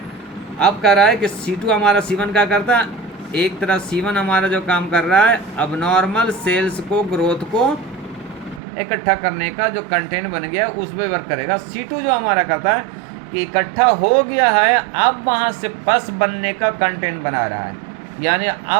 अब कह रहा है कि C2 हमारा C1 का करता है, एक तरह C1 हमारा जो काम कर रहा है अबनॉर्मल सेल्स को ग्रोथ को इकट्ठा करने का जो कंटेंट बन गया उस पर वर्क करेगा। C2 जो हमारा करता है कि इकट्ठा हो गया है, अब वहाँ से पस बनने का कंटेंट बना रहा है, यानी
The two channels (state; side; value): drops out; left; at 8.6 s